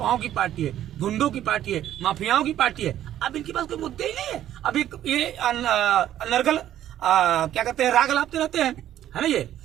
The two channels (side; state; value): left; quieter; 11.9 dB